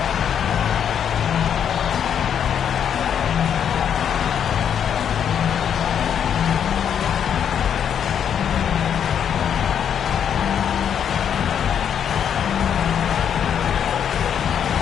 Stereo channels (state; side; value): quieter; right; 8.5 dB